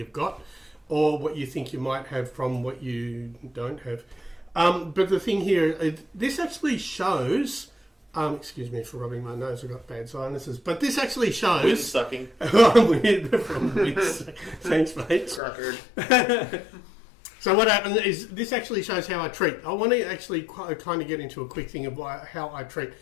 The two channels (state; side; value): drops out; right; at 15.4 s